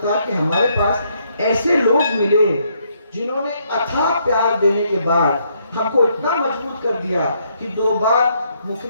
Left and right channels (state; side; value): inverted; both; correlation -0.73